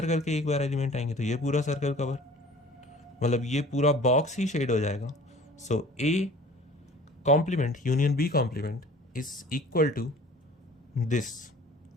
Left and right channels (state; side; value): normal; both; correlation 0.47